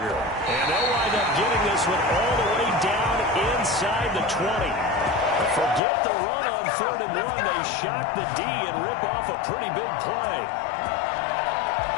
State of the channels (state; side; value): drops out; right; at 5.8 s